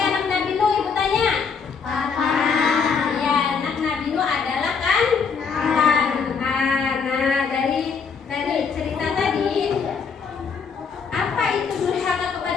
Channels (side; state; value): right; quieter; 5.7 dB